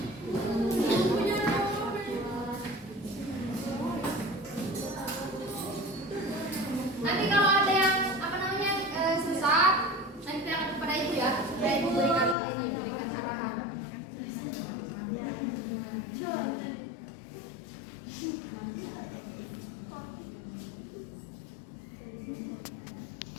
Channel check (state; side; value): drops out; right; at 12.4 s